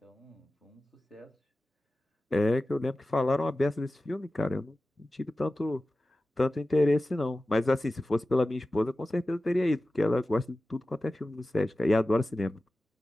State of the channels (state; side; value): normal; both; correlation 0.95